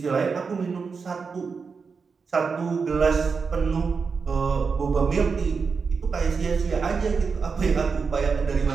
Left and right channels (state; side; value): quieter; left; 5.2 dB